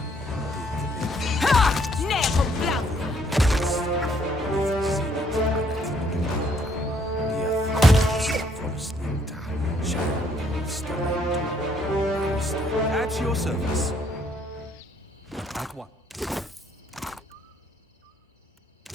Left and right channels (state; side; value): normal; both; correlation 0.67